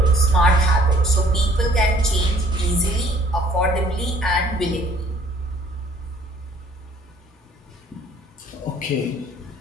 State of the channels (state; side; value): normal; both; correlation 0.58